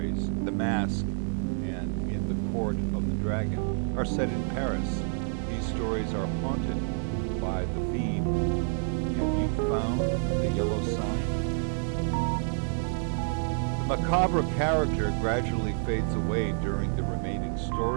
The Mask and In the Court of the Dragon, are set in Paris. These stories are haunted by the theme, "Have you found the yellow sign?" The macabre character gradually fades away during the remaining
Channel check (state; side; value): silent; left; 59 dB below the other